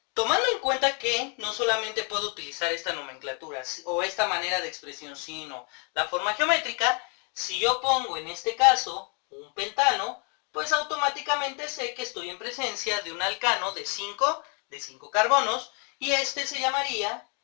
tomando en cuenta que no solamente puedo utilizar esta nomenclatura o esta manera de expresión, sino la forma geométrica, si yo pongo en este caso un pentano, pues automáticamente sé que estoy en presencia de un alcano de 5 carbonos y este se llamaría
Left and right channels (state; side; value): quieter; right; 36.6 dB